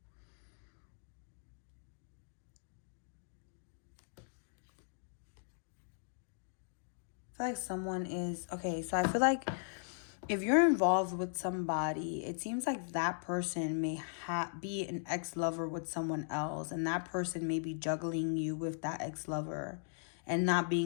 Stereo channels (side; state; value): right; silent; digital silence